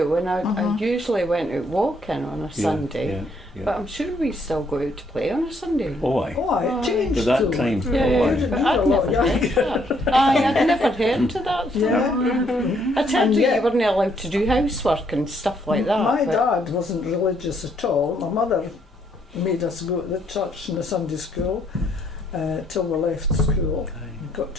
and I usually went out walking on a Yeah, Sunday. Yeah. Yeah. But I'm sure we still go out to play on a Sunday. Oh aye. Oh, it Aye. changed At that though. time. Yeah, Oh yeah, aye. You but were I'd a lot never heard younger. that. Aye, I'd never heard of that. Yeah. I told And you yet- you weren't allowed to do housework and stuff like that. My but- dad wasn't religious at all. My mother made us go to the church and the Sunday school till we left school. We got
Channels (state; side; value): normal; both; correlation 0.70